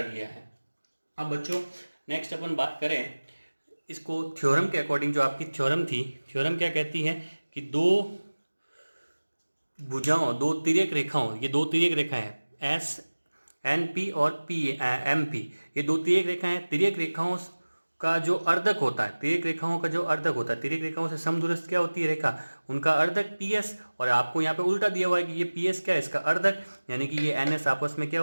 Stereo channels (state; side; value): inverted; both; correlation -1.00